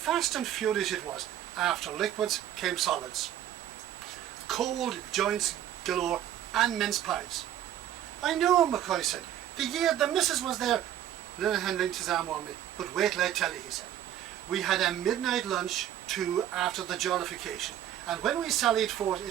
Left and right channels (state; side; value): quieter; left; 11.5 dB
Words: and furious it was. After liquids came solids. Cold joints galore and mince pies. I know, McCoy said. The year the missus was there. Lenihan linked his arm on me. But wait till I tell you, he said. We had a midnight lunch too after the jollification, and when we sallied forth